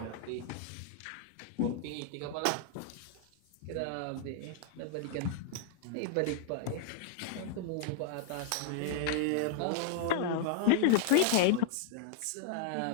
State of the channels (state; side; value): different; both; correlation -0.01